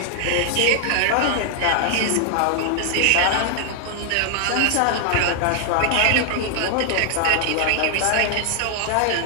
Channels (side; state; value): both; different; correlation 0.00